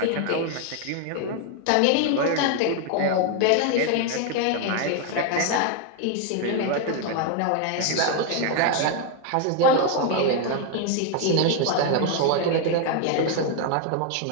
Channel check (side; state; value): both; different; correlation 0.01